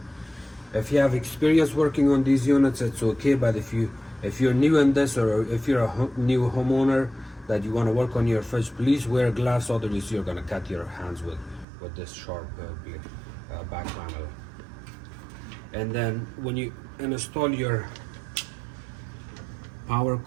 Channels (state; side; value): drops out; left; at 11.7 s